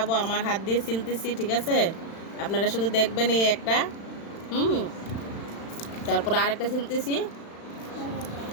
আমার হাত দিয়ে ছিলতেছি, ঠিক আছে? আপনারা শুধু দেখবেন এই একটা, হুম, তারপর আরেকটা ছিলতেছি,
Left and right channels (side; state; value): right; late; 36 ms